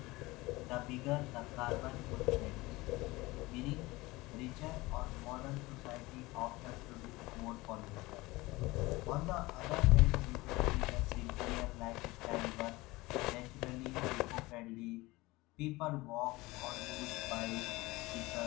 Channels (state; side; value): quieter; right; 21.1 dB